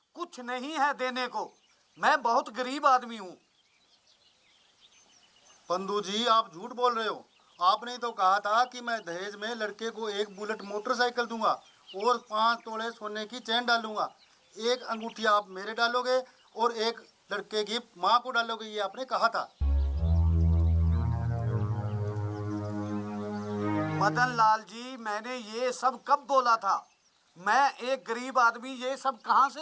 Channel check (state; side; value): identical; both; correlation 1.00